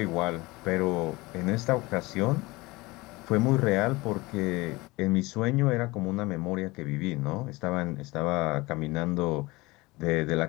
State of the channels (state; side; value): quieter; right; 22.3 dB